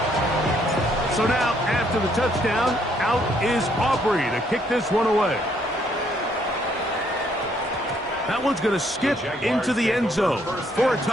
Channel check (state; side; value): normal; both; correlation 0.69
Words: So now, after the touchdown, out is Aubrey to kick this one away. That one's going to skip into the end zone for a